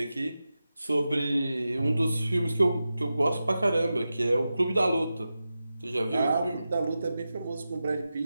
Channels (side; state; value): both; inverted; correlation -0.92